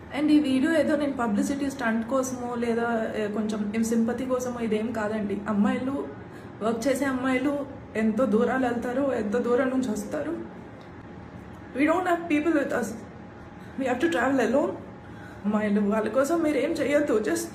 అండ్ ఈ వీడియో ఏదో నేను పబ్లిసిటీ స్టంట్ కోసమో లేదా కొంచెం సింపతి కోసమో ఇదేం కాదండి. అమ్మాయిలు, వర్క్ చేసే అమ్మాయిలు ఎంతో దూరాలు వెళ్తారు, ఎంతో దూరం నుంచి వస్తారు. We don't have people with us, we have to travel alone. అమ్మాయిలు, వాళ్ళ కోసం మీరు ఏం చేయొద్దు, జస్ట్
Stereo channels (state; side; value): identical; both; correlation 1.00